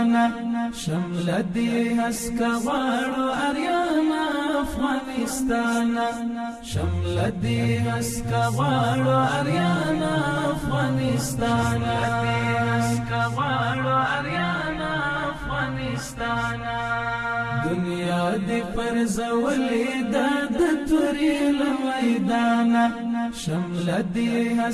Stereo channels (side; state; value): both; identical; correlation 1.00